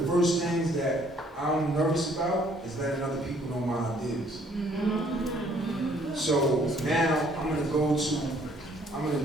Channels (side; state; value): both; normal; correlation 0.62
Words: first things that I'm nervous about is letting other people know my ideas. Mm-hmm. So now I'm gonna go to